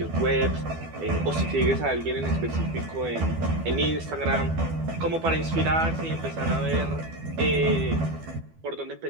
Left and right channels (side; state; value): left; late; 12 ms